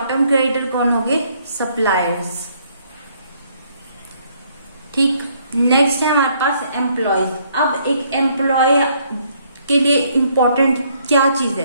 टर्म क्रेडिटर कौन होंगे, सप्लायर्स। ठीक, नेक्स्ट है हमारे पास एम्प्लॉयज। अब एक एम्प्लॉय के लिए इम्पोर्टेंट क्या चीज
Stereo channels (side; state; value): both; inverted; correlation -0.67